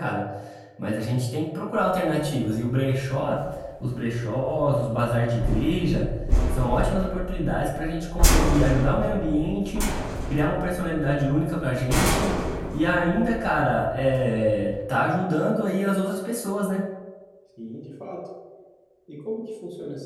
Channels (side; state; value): both; identical; correlation 1.00